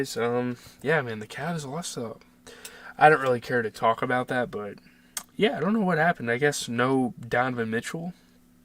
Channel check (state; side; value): identical; both; correlation 1.00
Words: Yeah, man, the Cavs lost. I don't really care to talk about that, but yeah, I don't know what happened. I guess no Donovan Mitchell.